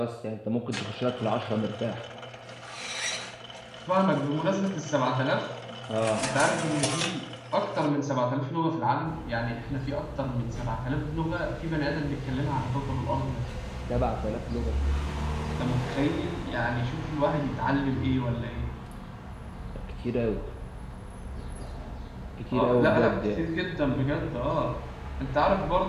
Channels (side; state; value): both; identical; correlation 1.00